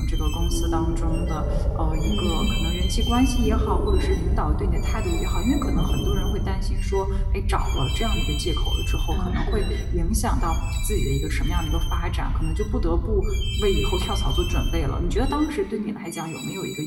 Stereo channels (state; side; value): identical; both; correlation 1.00